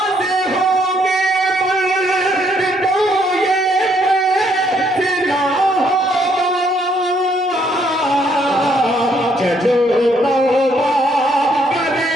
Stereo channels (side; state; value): both; normal; correlation 0.69